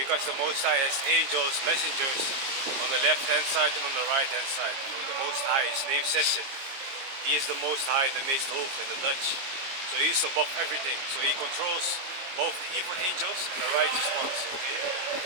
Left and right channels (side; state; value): left; late; 22 ms